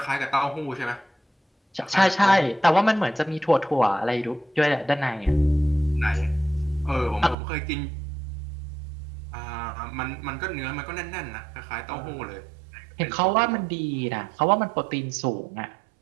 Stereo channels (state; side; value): drops out; left; at 7.4 s